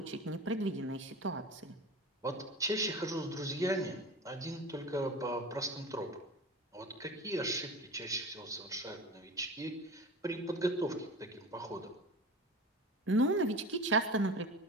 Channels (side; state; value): both; normal; correlation 0.33